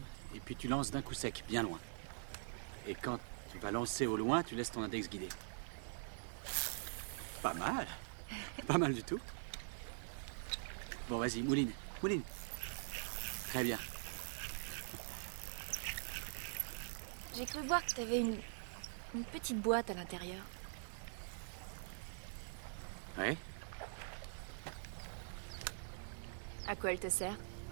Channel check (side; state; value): left; silent; digital silence